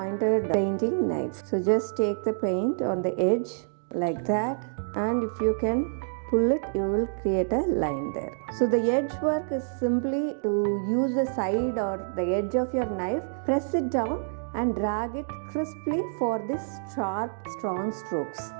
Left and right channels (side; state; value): left; silent; digital silence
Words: painting knife. So just take the paint on the edge like that, and if you can pull it, you will create a line there. So the edge work is simply to use the side or the edge of your knife, press it down and drag it crisply for this sharp, strong strokes.